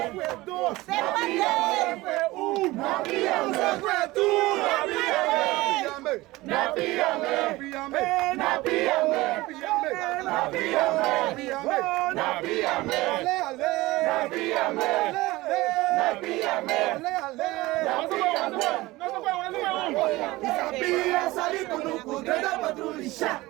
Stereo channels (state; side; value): quieter; left; 19.7 dB